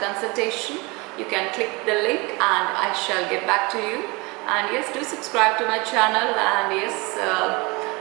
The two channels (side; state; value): left; quieter; 26.4 dB